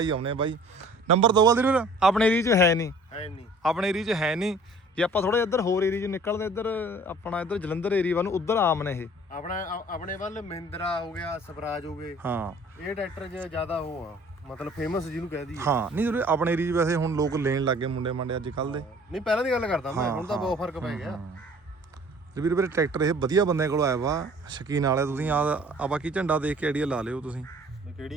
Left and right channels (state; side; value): normal; both; correlation 0.51